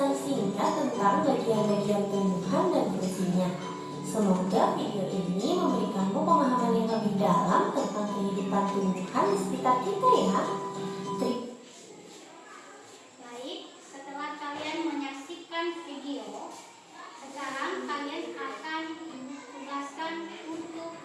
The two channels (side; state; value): both; identical; correlation 1.00